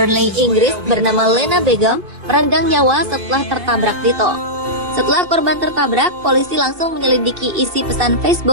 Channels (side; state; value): left; late; 2.7 ms